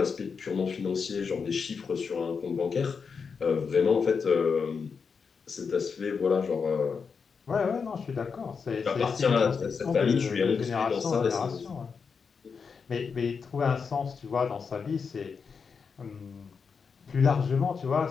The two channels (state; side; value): quieter; right; 5.7 dB